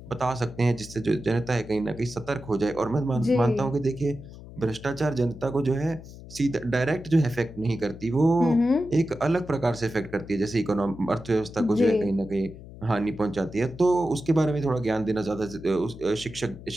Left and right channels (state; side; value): noise; left; hum, 16 dB below the sound